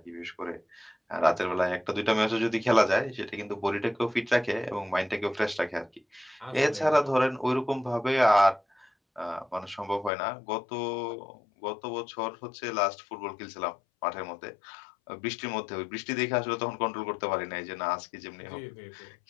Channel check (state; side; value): drops out; right; at 10.1 s